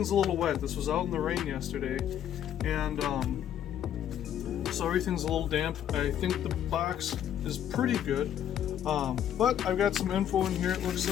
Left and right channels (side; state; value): right; quieter; 10.2 dB